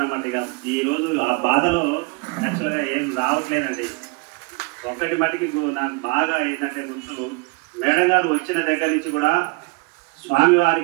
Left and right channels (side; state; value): left; quieter; 27.8 dB